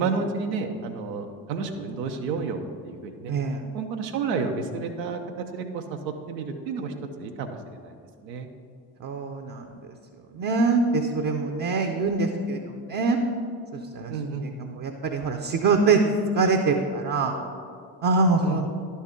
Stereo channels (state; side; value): quieter; left; 3.4 dB